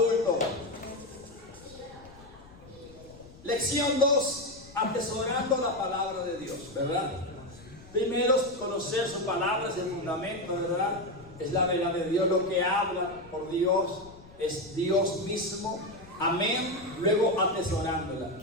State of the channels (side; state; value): left; noise; rumble, 21 dB below the sound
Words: Lección 2, atesorando la palabra de Dios, ¿verdad? Primero, conocer su palabra, es el fundamento, ¿verdad? Es la verdad de Dios, lo que habla por Dios, es Dios mismo. Amén. Luego atesorándola.